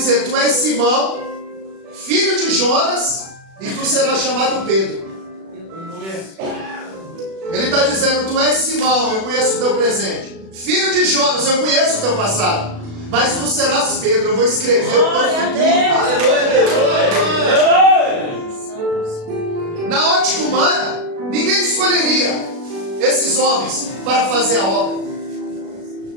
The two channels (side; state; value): left; late; 36 ms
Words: tu és Simão, filho de Jonas, e tu serás chamado Pedro. Ele está dizendo: tu és Simão, eu conheço o teu presente. Filho de Jonas, eu conheço o teu passado. Mas tu serás Pedro, eu vou escrever o teu Glória a futuro. Deus. Na ótica humana, ninguém escolheria esses homens para fazer a obra.